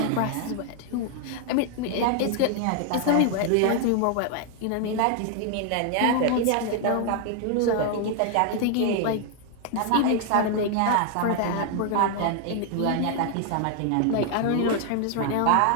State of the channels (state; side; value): different; both; correlation 0.00